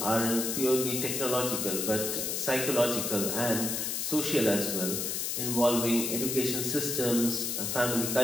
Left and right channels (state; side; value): noise; left; hiss, 1 dB below the sound